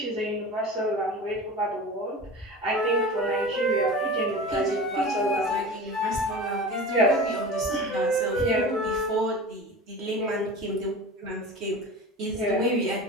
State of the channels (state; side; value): normal; both; correlation 0.33